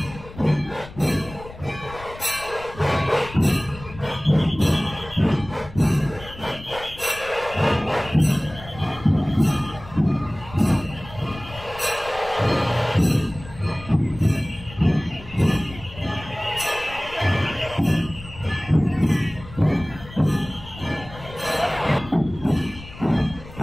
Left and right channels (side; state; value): left; noise; rumble, 16 dB below the sound